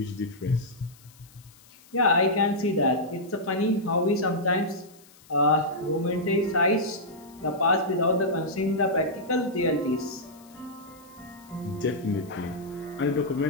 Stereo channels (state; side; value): noise; left; hiss, 26 dB below the sound